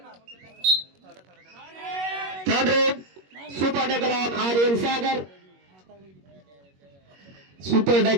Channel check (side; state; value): left; late; 21 ms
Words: Third raid super tackle on Aryan Sagar. Super